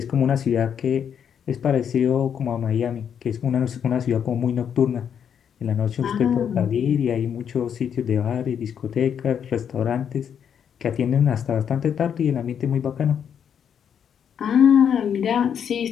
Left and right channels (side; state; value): right; quieter; 8.2 dB